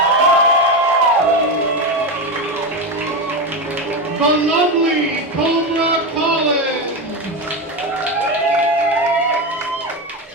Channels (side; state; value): both; normal; correlation 0.15